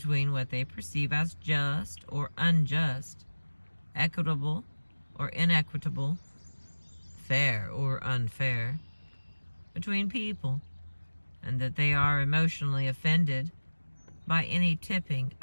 what they perceive as just or unjust, equitable or inequitable, fair or unfair, between people, and that they are emotionally offended by any tipping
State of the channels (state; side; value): inverted; both; correlation -1.00